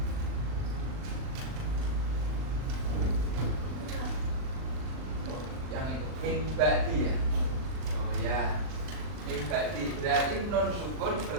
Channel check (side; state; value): left; late; 39 ms